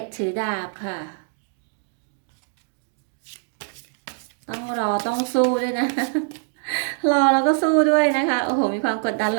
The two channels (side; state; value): left; silent; 63 dB below the other